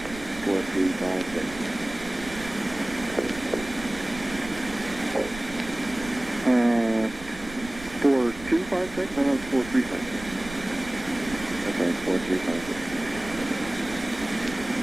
4, 3, 5, 6. 456? No, it's 4356. Okay,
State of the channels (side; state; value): right; noise; rumble, 15 dB below the sound